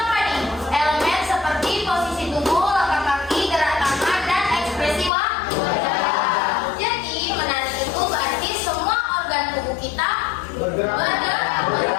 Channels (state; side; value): drops out; right; at 5.1 s